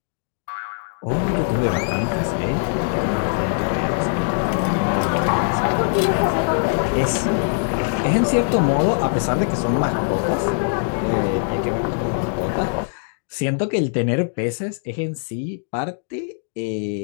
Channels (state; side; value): silent; right; digital silence